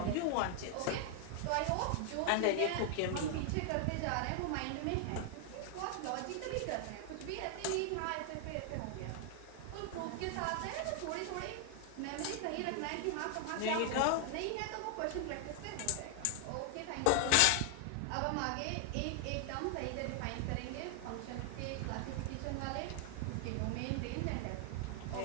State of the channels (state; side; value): different; both; correlation 0.00